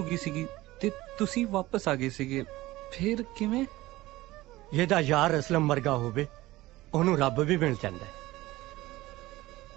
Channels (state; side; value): quieter; left; 18.1 dB